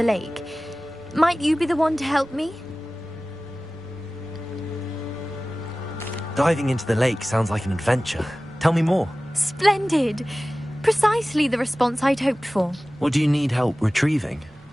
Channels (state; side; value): normal; both; correlation 0.97